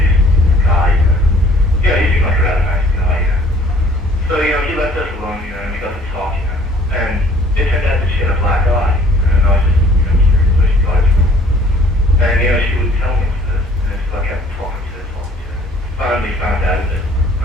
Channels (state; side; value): normal; both; correlation 0.56